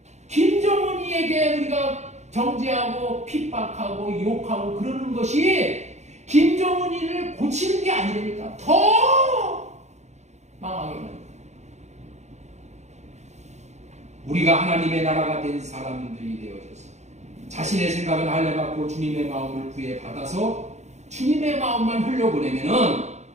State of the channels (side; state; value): left; late; 0.33 ms